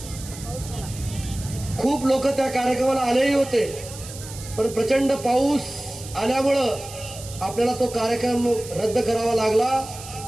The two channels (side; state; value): right; noise; hiss, 14 dB below the sound